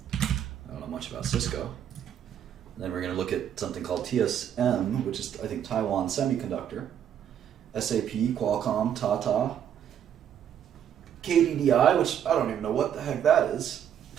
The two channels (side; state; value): left; quieter; 9.4 dB